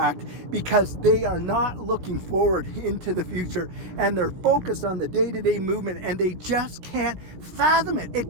because they are not looking forward into the future and they're focused on the day-to-day movement and they just can't fathom it.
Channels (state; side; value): late; left; 16 ms